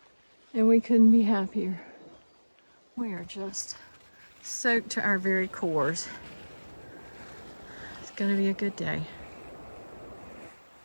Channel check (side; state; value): both; inverted; correlation -1.00